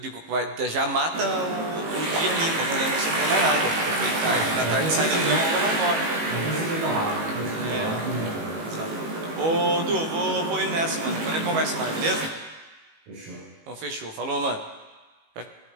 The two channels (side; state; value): left; late; 18 ms